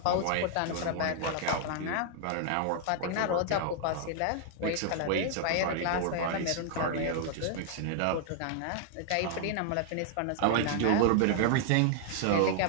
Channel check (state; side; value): different; both; correlation -0.01